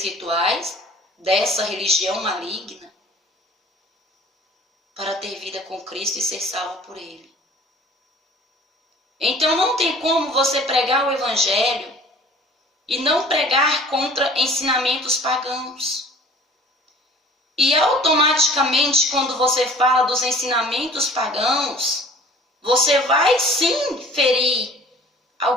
rituais, dessa religião maligna, para ter vida com Cristo e ser salvo por Ele. Então não tem como você pregar o Evangelho e não pregar contra ensinamentos pagãos. E automaticamente, quando você fala dos ensinamentos pagãos, você vai sim ferir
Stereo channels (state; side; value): normal; both; correlation 0.48